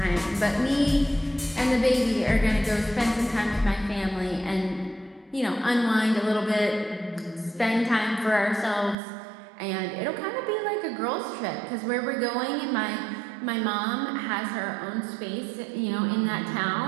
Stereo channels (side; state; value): left; drops out; at 9.0 s